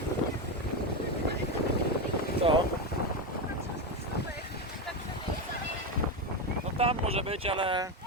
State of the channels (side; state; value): both; normal; correlation 0.13